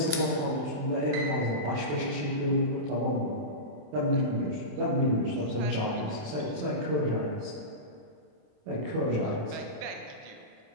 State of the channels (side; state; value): left; late; 27 ms